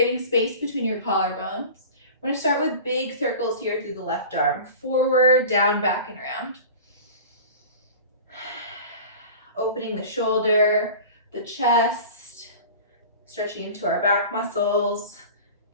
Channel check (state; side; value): inverted; both; correlation -0.37